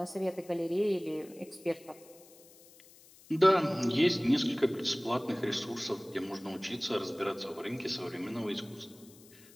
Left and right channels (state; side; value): noise; left; hiss, 24 dB below the sound